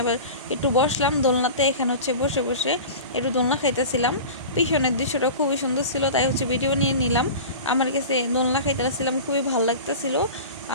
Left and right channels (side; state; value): both; inverted; correlation -0.34